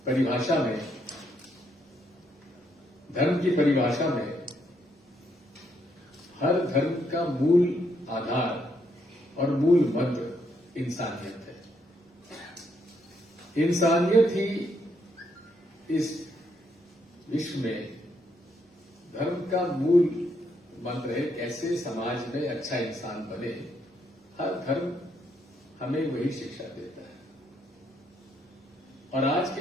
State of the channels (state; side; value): normal; both; correlation 0.75